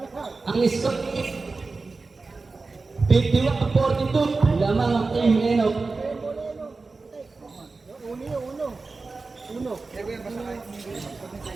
Ang score 51-42. Lamang ang team Enok.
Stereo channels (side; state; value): left; quieter; 3.9 dB